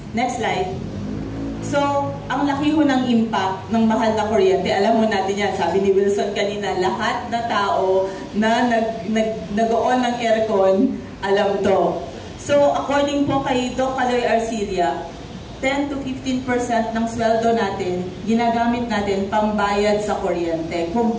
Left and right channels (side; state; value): both; identical; correlation 1.00